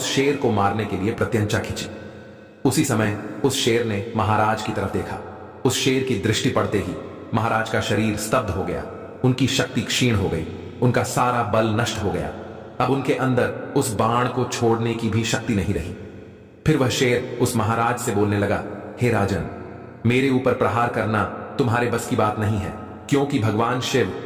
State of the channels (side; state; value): both; identical; correlation 1.00